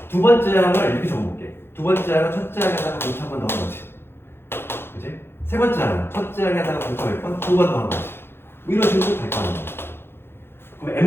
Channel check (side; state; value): right; late; 0.11 ms